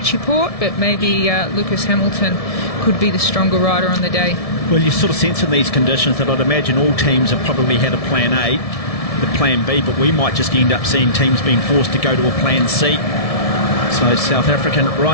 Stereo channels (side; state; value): right; late; 1.7 ms